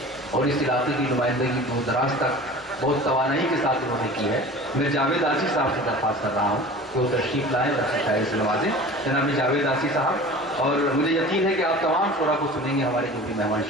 और इस इलाके की नुमाइंदगी दूर दराज तक बहुत तवानाई के साथ उन्होंने की है। मैं जावेद आसी साहब से दरख्वास्त कर रहा हूँ कि वो तशरीफ़ लाएँ और अपनी शायरी से नवाजें। जनाब जावेद आसी साहब, और मुझे यकीन है कि आप तमाम शोरा को सुनेंगे, हमारे जो भी मेहमान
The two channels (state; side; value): normal; both; correlation 0.39